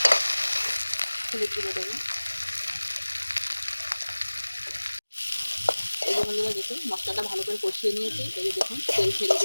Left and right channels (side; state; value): both; inverted; correlation -1.00